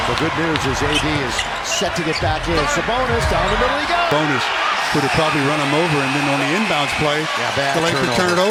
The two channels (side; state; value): both; identical; correlation 1.00